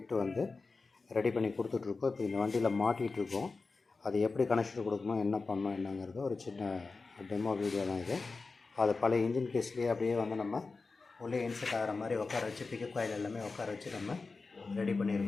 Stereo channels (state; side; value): quieter; right; 4.1 dB